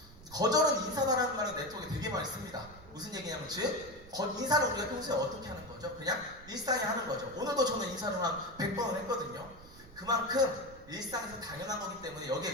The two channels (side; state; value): right; noise; rumble, 20 dB below the sound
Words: 거절은 인사다라는 말은 네트워크에 되게 많이 씁니다. 무슨 얘기냐면 즉 인사를 우리가 평소에 어떻게 하는 거죠? 그냥 일상에 하는 거죠. 오늘도 저는 인사를 한 100번은 했거든요. 그만큼 일상에서 당연한 거기 때문에 여기에